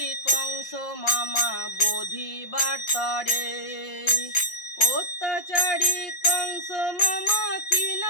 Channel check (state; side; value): late; right; 5.7 ms